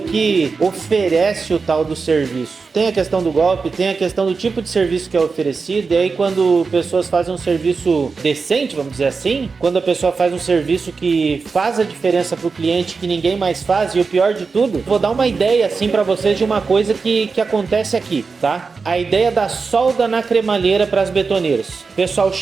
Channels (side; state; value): left; quieter; 4.7 dB